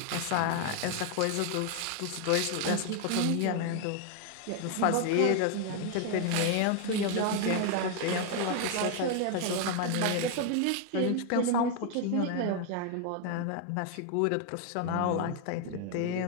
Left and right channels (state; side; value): different; both; correlation 0.00